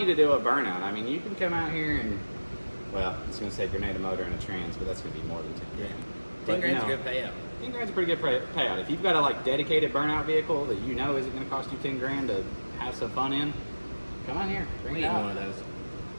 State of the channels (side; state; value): both; inverted; correlation -1.00